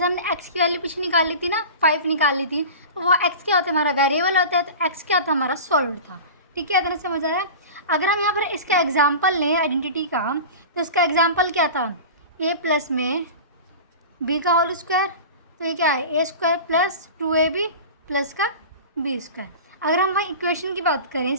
हमने एक्स की वैल्यू पीछे निकाल ली थी ना, 5 निकाल ली थी, तो वो एक्स क्या होता है, हमारा वेरिएबल होता है, तो एक्स क्या था, हमारा सॉल्व था, ठीक है। इतना समझ आया? अगर हम यहाँ पर इसका एग्जाम्पल लें आइडेंटिटी का, तो इसका एग्जाम्पल क्या था, ए प्लस में बी का होल स्क्वायर, तो ये क्या है, ए स्क्वायर प्लस 2ab प्लस का बी स्क्वायर। अगर हम वहाँ इक्वेशन की बात करें,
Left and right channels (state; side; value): inverted; both; correlation -0.33